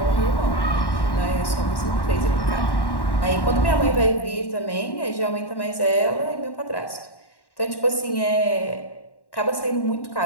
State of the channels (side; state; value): right; late; 1.1 ms